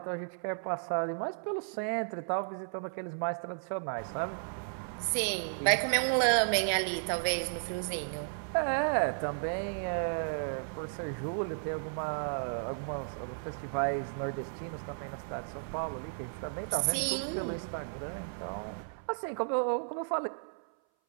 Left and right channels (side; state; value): left; silent; 55 dB below the other